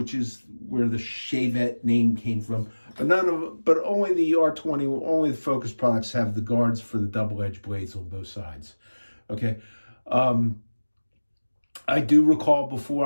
is where the Shavette name came from. But only the R20, only the Focus products have the guards for the double-edged blades on both sides. Okay. I do recall before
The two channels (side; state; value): both; inverted; correlation -1.00